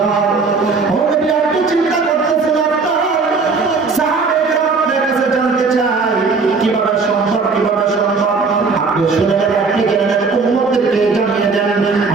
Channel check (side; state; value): left; quieter; 4.5 dB